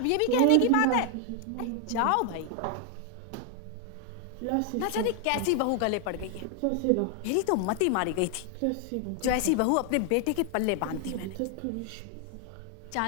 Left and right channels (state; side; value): different; both; correlation 0.00